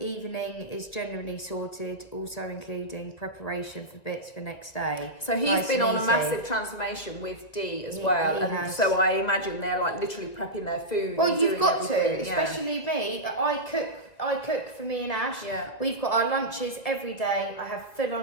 is generally sorted, also including preparation for bits for next day. So he's been on a massive transformation with Dee as well, and has. so I imagine they're like literally prepping their food. Well, and you've doing got everything. to, especially me. I cook for me and Ash. Yeah. We've got our lunches every day. I have full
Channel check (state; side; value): late; right; 1.9 ms